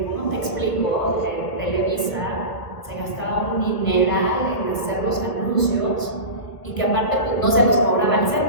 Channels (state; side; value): late; right; 1.5 ms